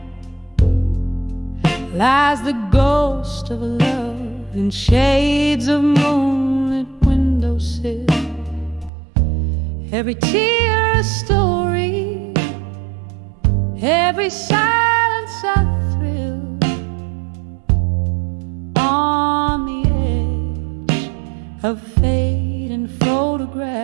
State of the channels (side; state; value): left; drops out; at 8.9 s